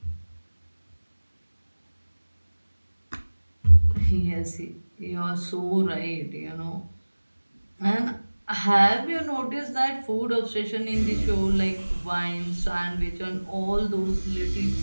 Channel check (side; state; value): both; inverted; correlation -1.00